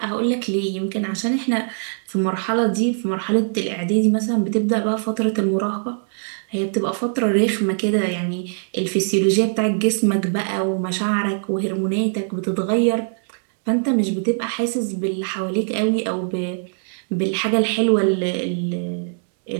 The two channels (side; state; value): left; silent; 65 dB below the other